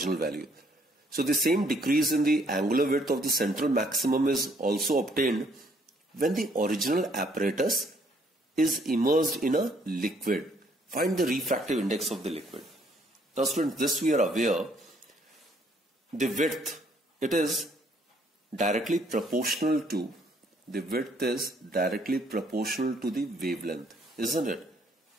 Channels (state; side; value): normal; both; correlation 0.66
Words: value. So the same decrease in the angular width of the central maximum is also obtained when the original apparatus is immersed in a liquid. Find the refractive index of the liquid. Now students, this we are aware. The width, it is directly proportional to the wavelength, isn't it?